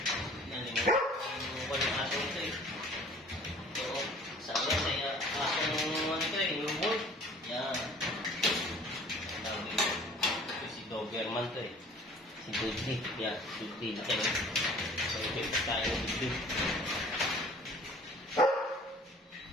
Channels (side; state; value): both; normal; correlation 0.49